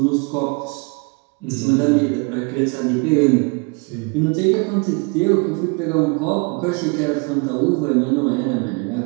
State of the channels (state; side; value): quieter; left; 31.8 dB